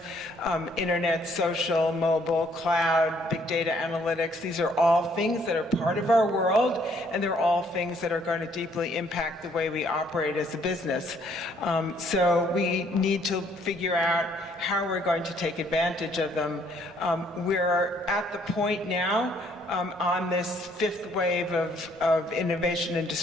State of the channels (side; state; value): both; normal; correlation 0.65